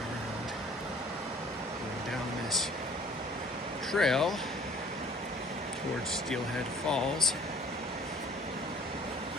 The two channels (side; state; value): both; normal; correlation 0.53